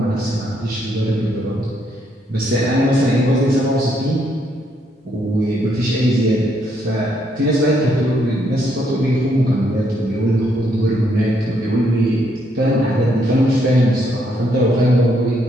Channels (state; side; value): normal; both; correlation 0.73